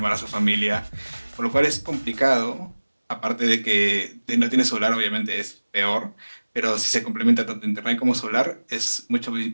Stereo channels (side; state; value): both; inverted; correlation -1.00